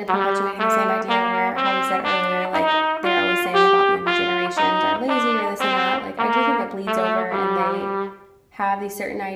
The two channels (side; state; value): both; identical; correlation 1.00